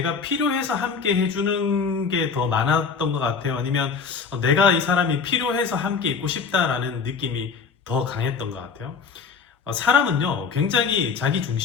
필요해서 함께 해주는 게 더 많았던 것 같아요. 아니면 내가 이 사람이 필요해서 함께 있고 싶다라는 느낌이 더 강했던 것 같아요. 사람은요, 굉장히 자기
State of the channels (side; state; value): right; quieter; 5.5 dB